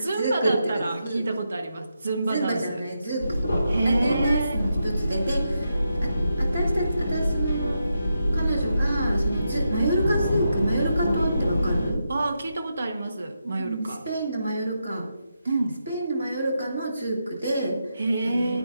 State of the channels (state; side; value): inverted; both; correlation -0.85